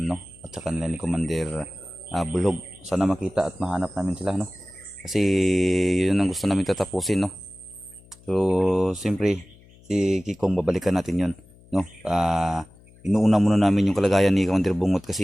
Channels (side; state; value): left; noise; hum, 26 dB below the sound